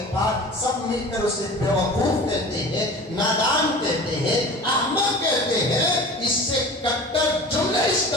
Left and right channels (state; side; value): normal; both; correlation 0.38